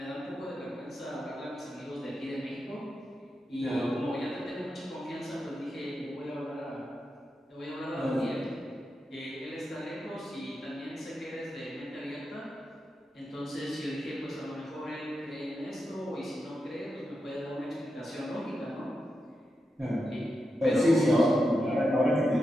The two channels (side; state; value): both; normal; correlation 0.88